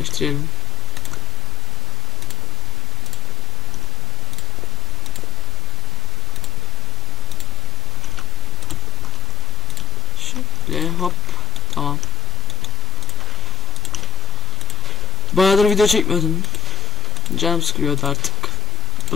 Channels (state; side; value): normal; both; correlation 0.98